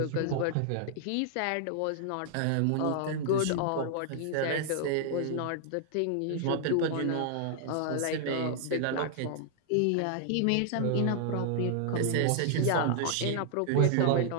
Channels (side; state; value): both; different; correlation -0.01